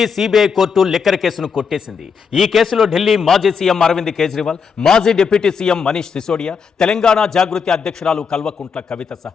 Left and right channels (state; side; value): quieter; right; 6.0 dB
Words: సిబిఐ కోర్టు లిక్కర్ కేసును కొట్టేసింది. ఈ కేసులో ఢిల్లీ మాజీ సీఎం అరవింద్ కేజ్రీవాల్, మాజీ డిప్యూటీ సీఎం మనీష్ సిసోడియా, తెలంగాణ జాగృతి అధ్యక్షురాలు కల్వకుంట్ల కవిత